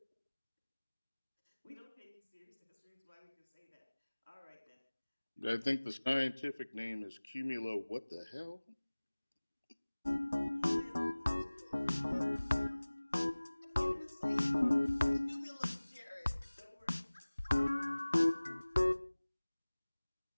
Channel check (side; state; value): both; inverted; correlation -1.00